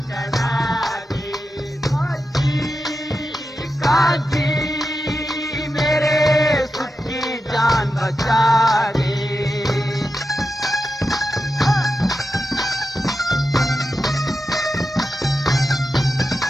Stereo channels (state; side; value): normal; both; correlation 0.90